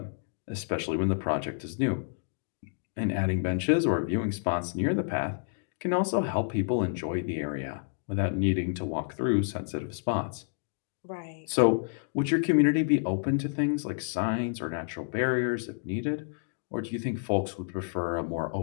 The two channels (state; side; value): silent; right; digital silence